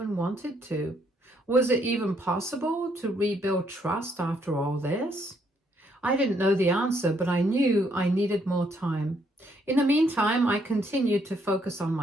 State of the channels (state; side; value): normal; both; correlation 0.71